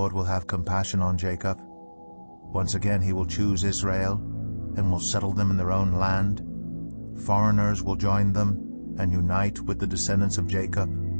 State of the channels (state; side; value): inverted; both; correlation -1.00